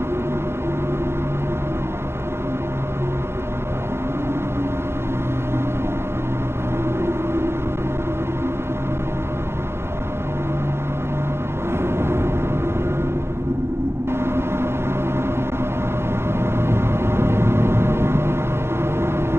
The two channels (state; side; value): late; left; 0.12 ms